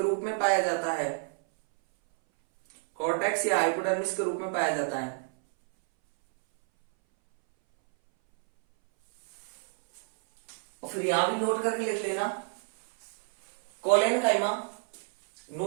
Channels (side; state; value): left; silent; 59 dB below the other